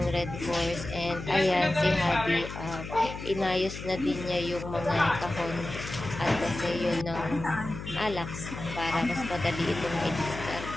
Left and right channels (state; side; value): noise; left; hum, 9 dB below the sound